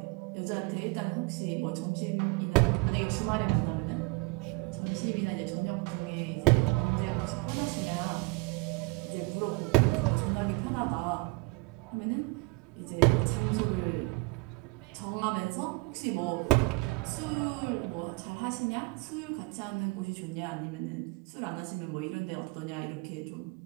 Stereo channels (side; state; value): left; quieter; 26.3 dB